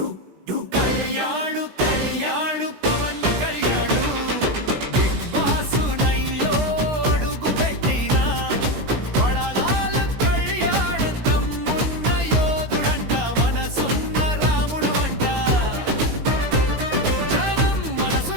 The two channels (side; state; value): left; late; 16 ms